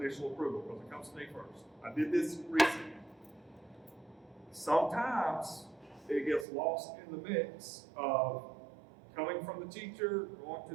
approval, because it comes to me first. I did this recently. Sometimes it gets lost in the mix of coming from the teacher, going to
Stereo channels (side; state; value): left; drops out; at 6.5 s